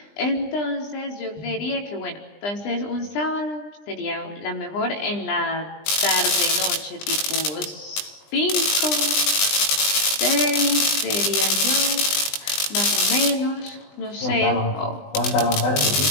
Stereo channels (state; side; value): late; right; 20 ms